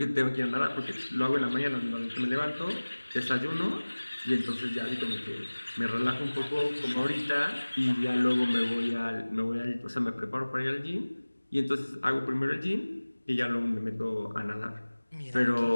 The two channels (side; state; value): both; inverted; correlation -1.00